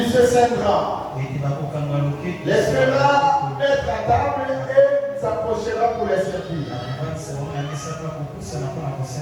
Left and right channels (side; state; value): both; identical; correlation 1.00